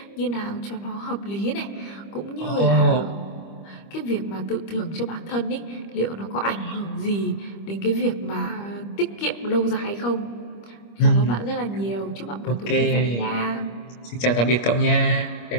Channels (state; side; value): late; right; 25 ms